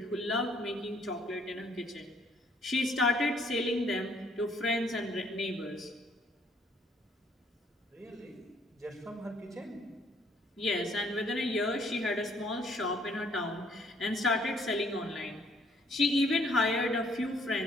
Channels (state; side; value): normal; both; correlation 0.65